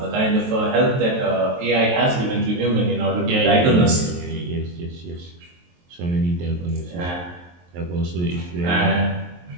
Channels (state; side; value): late; left; 23 ms